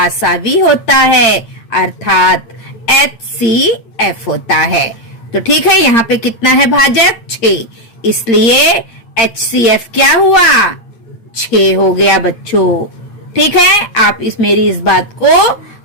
होता है, अर्थात HCF होता है। तो ठीक है, यहाँ पे कितना है भाजक? 6, इसलिए HCF क्या हुआ? 6 हो गया बच्चों। ठीक है, आप मेरी इस बात को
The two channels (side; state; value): right; late; 8.7 ms